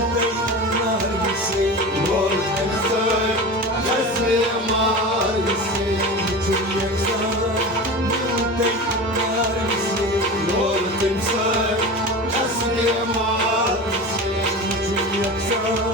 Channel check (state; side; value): normal; both; correlation 0.30